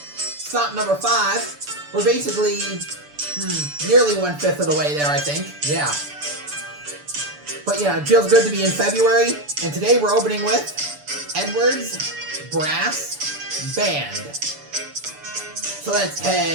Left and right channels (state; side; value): late; left; 6.9 ms